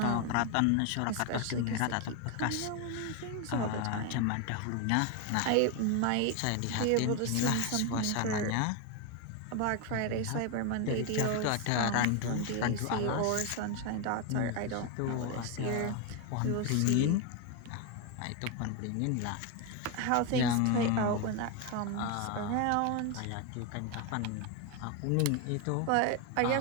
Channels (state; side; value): different; both; correlation 0.02